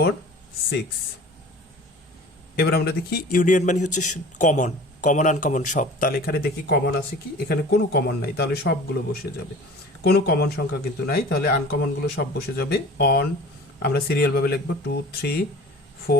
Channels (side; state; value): both; normal; correlation 0.42